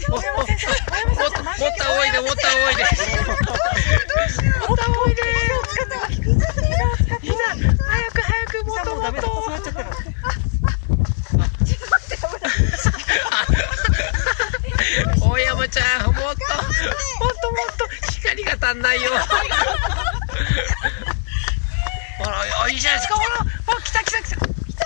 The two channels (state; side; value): silent; right; 57 dB below the other